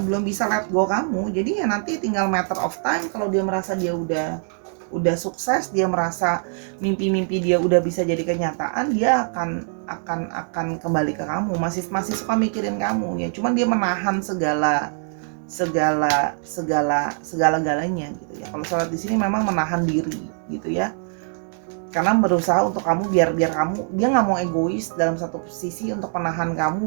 bisa let go kamu. Jadi ya nanti tinggal matter of time, kalau dia merasa dia udah sukses, dia merasa mimpi-mimpi dia udah bisa jadi kenyataan, dia akan kembali ke kamu. Masih suka mikirin kamu ya, cuman dia menahan segala-galanya gitu ya. Kalau Sora di sini memang menahan diri gitu ya, karena berusaha untuk kamu, biar kamu, dia nggak mau egois dalam satu sisi untuk menahan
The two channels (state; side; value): silent; left; 56 dB below the other